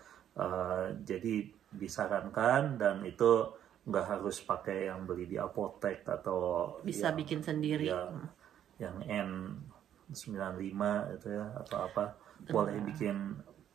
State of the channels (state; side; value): quieter; left; 10.3 dB